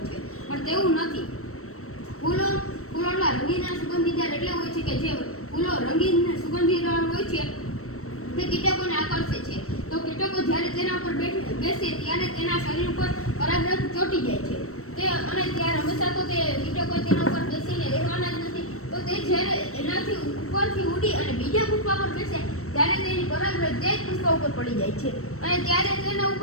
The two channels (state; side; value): late; right; 0.63 ms